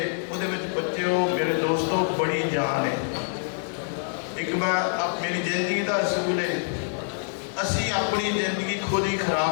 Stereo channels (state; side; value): silent; right; digital silence